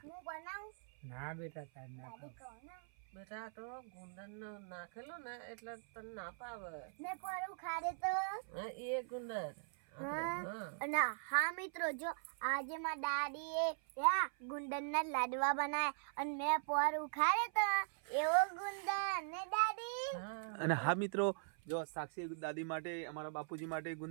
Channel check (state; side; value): silent; left; 50 dB below the other